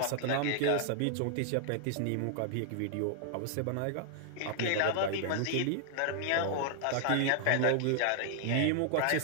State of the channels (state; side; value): different; both; correlation 0.00